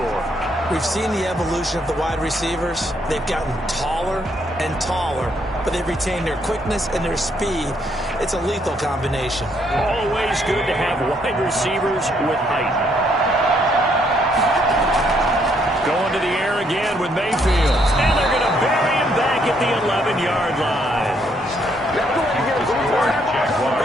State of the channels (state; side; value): normal; both; correlation 0.71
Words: We've seen the evolution of the wide receivers. They've gotten taller and taller, but they've retained their quickness and their speed. It's a lethal combination. Always good to have wide receivers with height. Going to the air again with Mayfield. And they're going to bury him back at the 11-yard line.